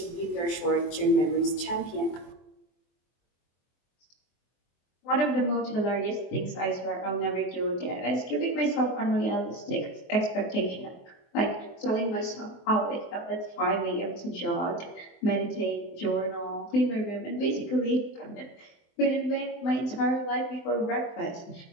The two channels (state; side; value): late; right; 24 ms